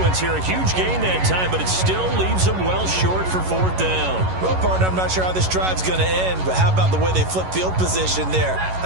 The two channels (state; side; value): late; left; 11 ms